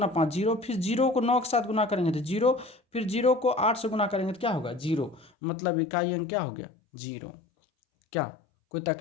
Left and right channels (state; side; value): drops out; right; at 5.3 s